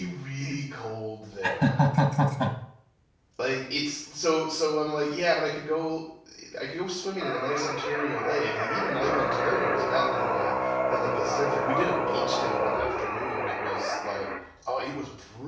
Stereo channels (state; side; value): identical; both; correlation 1.00